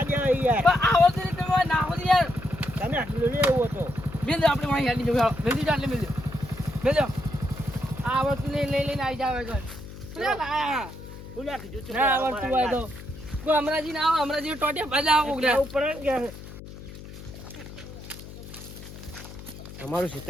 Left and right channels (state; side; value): noise; left; hum, 14 dB below the sound